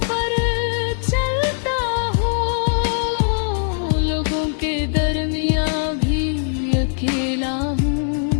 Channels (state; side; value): silent; right; digital silence